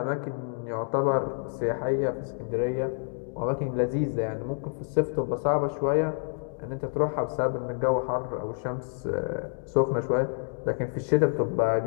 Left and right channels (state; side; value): silent; right; 59 dB below the other